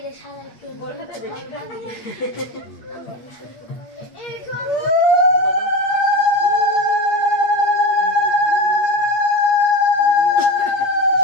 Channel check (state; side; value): late; right; 8.4 ms